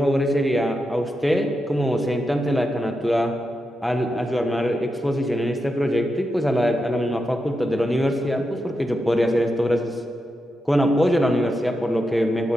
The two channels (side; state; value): both; normal; correlation 0.87